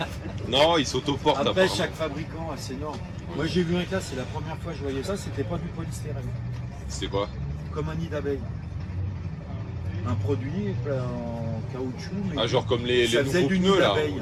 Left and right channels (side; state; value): both; identical; correlation 1.00